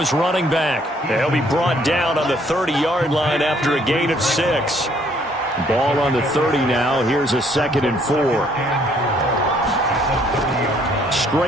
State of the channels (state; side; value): normal; both; correlation 0.64